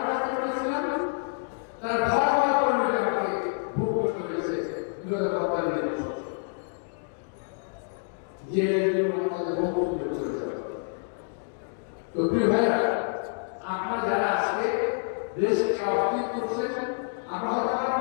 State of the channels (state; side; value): silent; right; digital silence